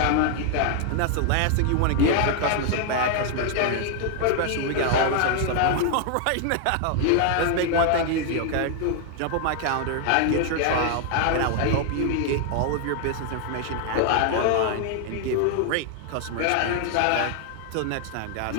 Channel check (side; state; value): both; different; correlation 0.00